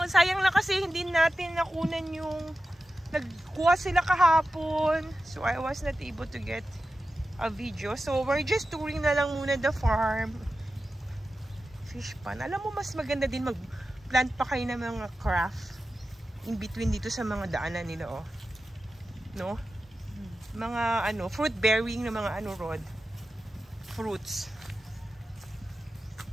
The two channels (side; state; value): both; normal; correlation 0.93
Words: Sayang lang kasi hindi natin nakunan yung nagkuha sila kahapon. So, I was not able to get a video. So, we're just touring na lang muna the farm. Fish pan. Alam mo, mas maganda din mag-plant pa kayo ng mga craft in between dito sa mga daanan nila, oh. No? Mga, fruit bearing na mga, Rod? Fruits.